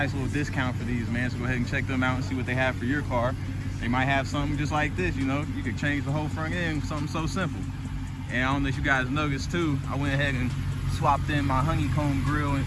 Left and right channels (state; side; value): identical; both; correlation 1.00